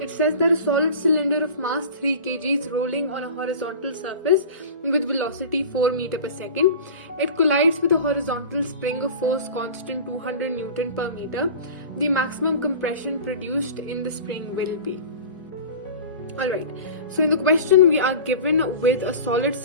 says that a solid cylinder of mass 3 kg is rolling on a horizontal surface with velocity 4 meter per second. It collides with a horizontal spring of force constant 200 Newton per meter. The maximum compression produced in the spring will be. Alright, so in the question we are given with a solid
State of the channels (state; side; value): inverted; both; correlation -0.36